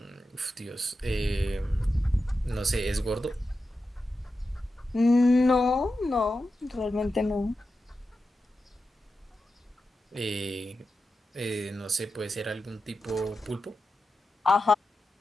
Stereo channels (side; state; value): both; normal; correlation 0.90